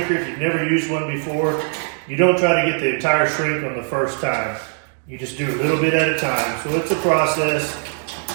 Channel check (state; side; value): silent; left; 58 dB below the other